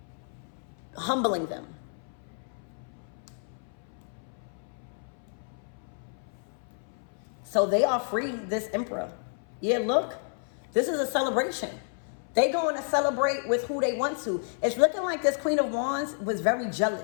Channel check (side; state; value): right; silent; 58 dB below the other